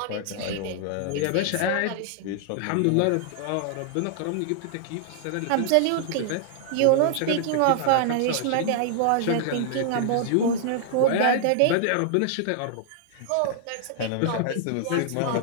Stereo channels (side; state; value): both; different; correlation -0.01